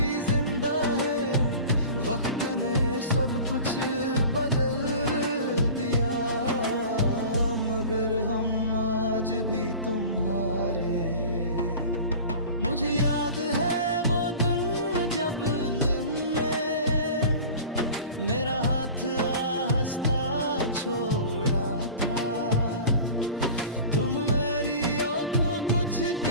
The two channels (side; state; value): both; inverted; correlation -0.38